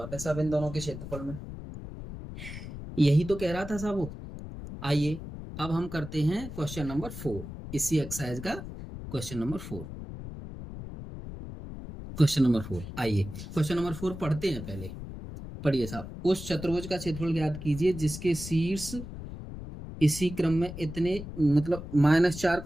है साहब इन दोनों के क्षेत्रफल में, यही तो कह रहा था साहब वो। आइए अब हम करते हैं क्वेश्चन नंबर 4, इसी एक्सरसाइज का क्वेश्चन नंबर 4। आइए क्वेश्चन नंबर 4 पढ़ते हैं। पहले पढ़िए साहब, उस चतुर्भुज का क्षेत्रफल ज्ञात कीजिए जिसके शीर्ष इसी क्रम में इतने, मतलब -4,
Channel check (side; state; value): left; noise; rumble, 10 dB below the sound